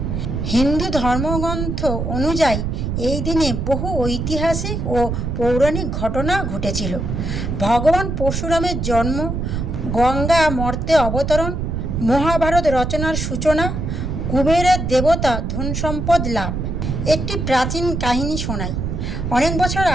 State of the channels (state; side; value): noise; right; rumble, 2 dB below the sound